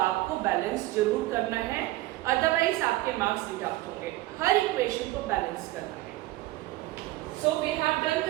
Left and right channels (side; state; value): left; quieter; 17.8 dB